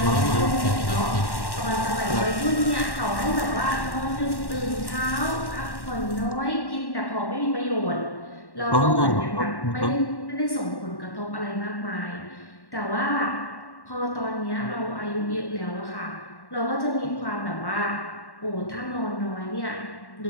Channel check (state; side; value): late; right; 1.1 ms